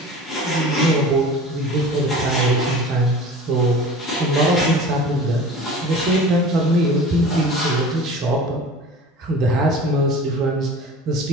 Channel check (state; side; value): normal; both; correlation 0.39